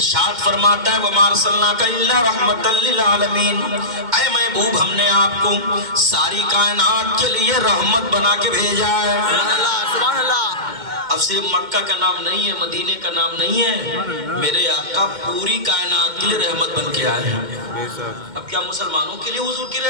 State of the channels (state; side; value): late; left; 2.1 ms